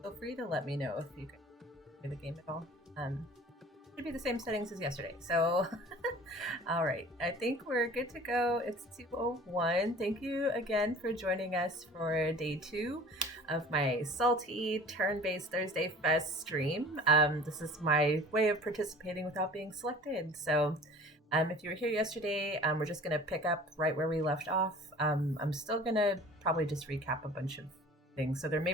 feel free to let me know if you can hear the game at all. Should be the same settings as yesterday. So, all right. I think we're good to go. It's 2:01. Thank you again for joining us for day 2 of my salty turn-based Thursday Fest stream. This is my way of participating without being selected. So, if you were here yesterday, we're just going to pick up right where we left off. I'm still going to probably just recap a bunch of things. So, there may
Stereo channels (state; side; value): normal; both; correlation 0.45